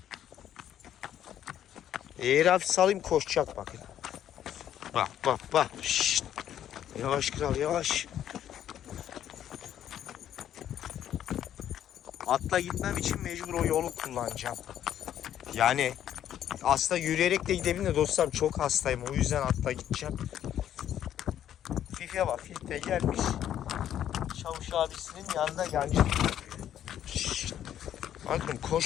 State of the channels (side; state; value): right; quieter; 10.7 dB